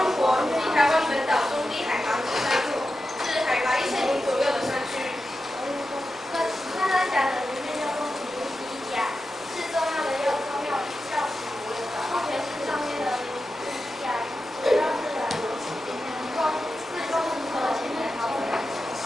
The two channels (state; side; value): normal; both; correlation 0.91